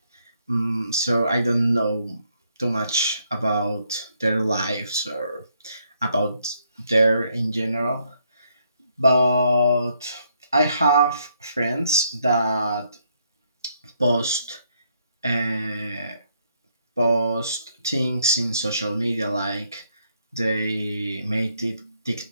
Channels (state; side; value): inverted; both; correlation -0.72